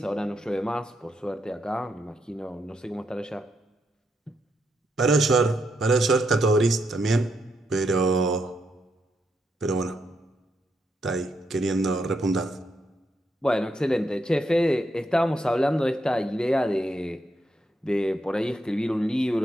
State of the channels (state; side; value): normal; both; correlation 0.80